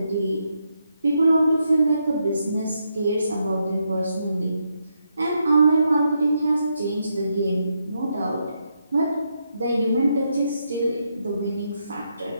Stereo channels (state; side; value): inverted; both; correlation -0.81